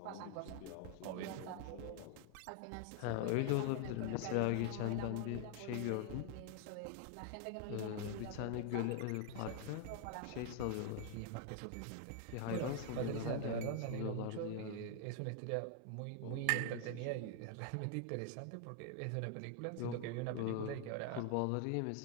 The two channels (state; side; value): different; both; correlation 0.00